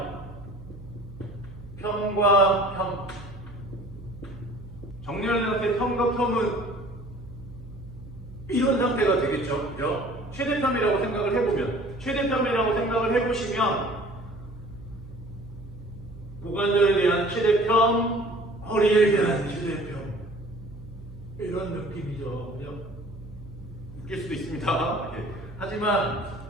평과 평. 정렬된 상태 평과 평은 이런 상태가 되겠죠. 그죠? 최대평이라고 생각을 해보면, 최대평이라고 생각을 해보시면 고관절에 대한 최대평, 허리에 대한 최대평, 이런 느낌이죠. 그죠? 웃길 수도 있습니다. 예.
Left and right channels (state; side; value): noise; right; hum, 15 dB below the sound